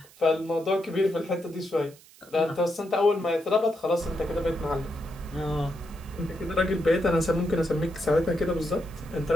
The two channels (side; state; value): right; noise; hiss, 24 dB below the sound